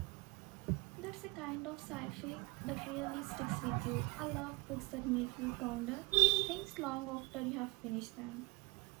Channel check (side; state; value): left; quieter; 28.0 dB